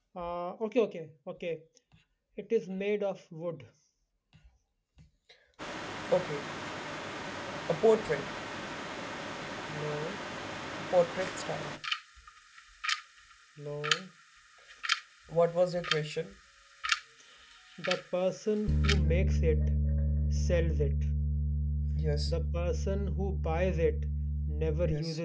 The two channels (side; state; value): both; identical; correlation 1.00